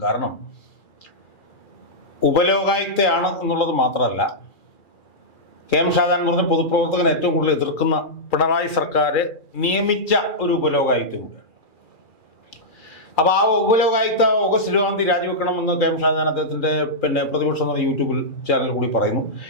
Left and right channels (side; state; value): right; late; 2.4 ms